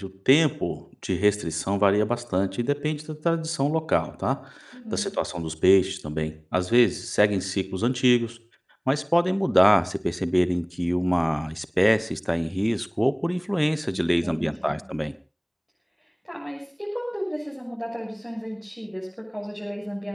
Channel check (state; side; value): identical; both; correlation 1.00